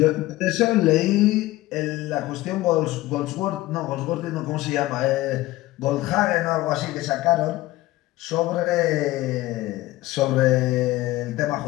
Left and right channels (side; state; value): right; quieter; 17.5 dB